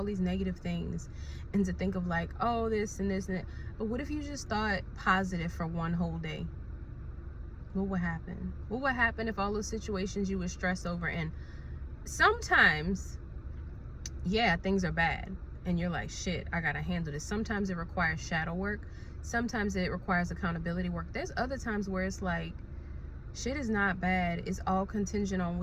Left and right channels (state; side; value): identical; both; correlation 1.00